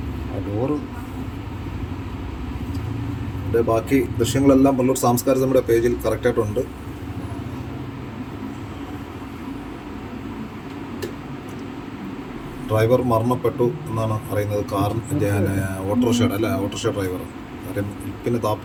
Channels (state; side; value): identical; both; correlation 1.00